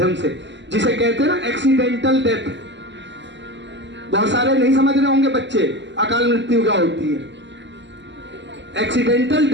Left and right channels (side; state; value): left; late; 0.53 ms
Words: से, जिसे कहते हैं ना एक्सीडेंटल डेथ। बहुत सारे नहीं समझ रहे होंगे बच्चे अकाल मृत्यु क्या होती है। एक्सीडेंटल